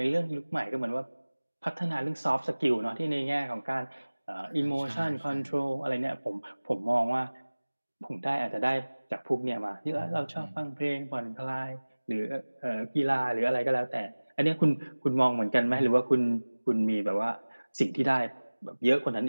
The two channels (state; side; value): inverted; both; correlation -1.00